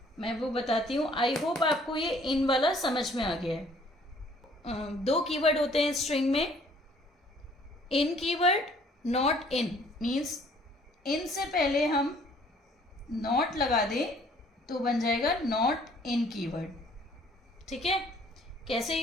मैं वो बताती हूँ। आई होप आपको ये इन वाला समझ में आ गया है। दो कीवर्ड होते हैं स्ट्रिंग में, in keyword, not in. Means in से पहले हम नॉट लगा दें तो बन जाएगा नॉट इन कीवर्ड, ठीक है? कैसे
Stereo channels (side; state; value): both; normal; correlation 0.59